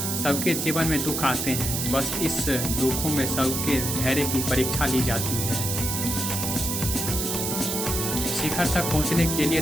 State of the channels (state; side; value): noise; right; hiss, 1 dB below the sound